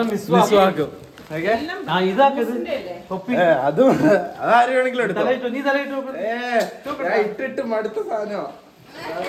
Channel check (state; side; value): identical; both; correlation 1.00